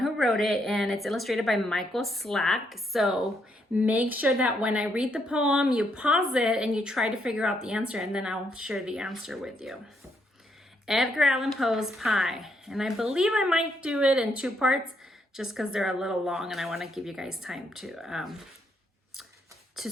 who wrote it, and it's illustrated by Michael Slack. So make sure that when I read the poem, you pause it and you try to figure out the answer, and then I'll share the answer with you. Edgar Allan Poe's Pie. And I believe I might do it in two parts just because they're a little long and I want to give you guys time to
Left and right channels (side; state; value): both; normal; correlation 0.75